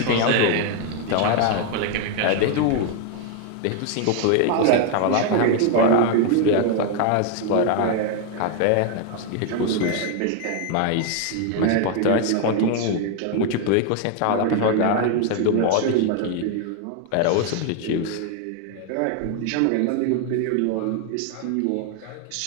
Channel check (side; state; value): both; different; correlation 0.01